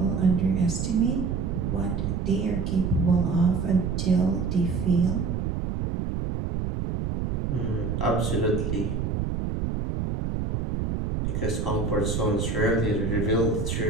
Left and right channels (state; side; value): noise; right; rumble, 1 dB below the sound